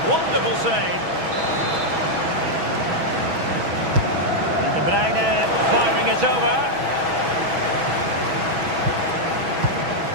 Wonderful save. Bruyne firing it over.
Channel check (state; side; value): late; left; 6.2 ms